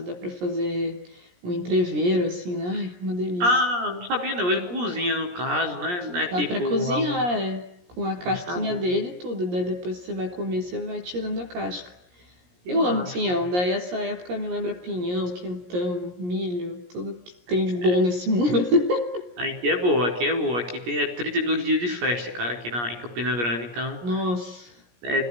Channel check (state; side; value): late; left; 17 ms